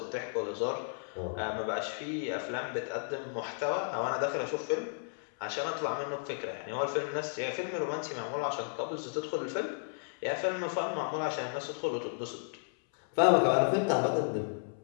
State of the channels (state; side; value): silent; right; 56 dB below the other